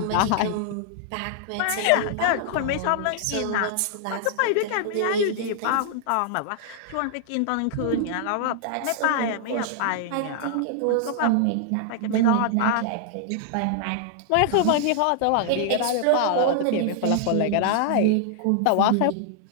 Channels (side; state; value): both; different; correlation -0.01